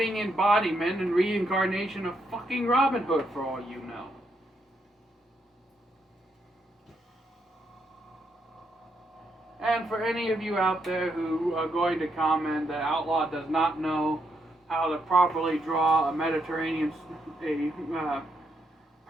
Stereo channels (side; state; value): both; normal; correlation 0.78